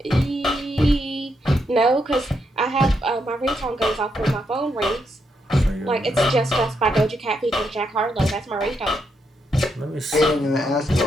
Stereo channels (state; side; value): normal; both; correlation 0.80